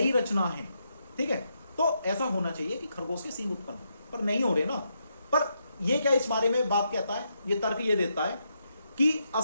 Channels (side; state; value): both; inverted; correlation -0.80